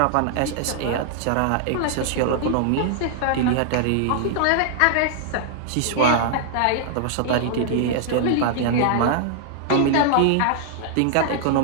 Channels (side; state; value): both; different; correlation -0.01